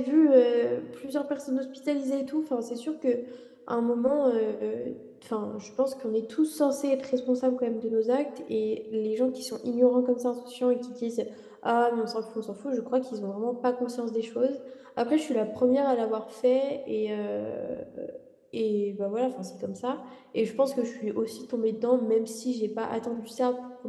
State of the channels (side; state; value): both; identical; correlation 1.00